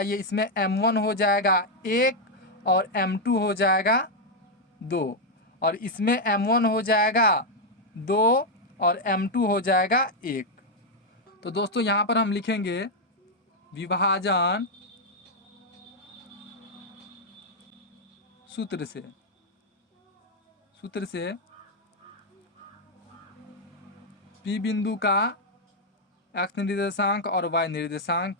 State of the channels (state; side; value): normal; both; correlation 0.00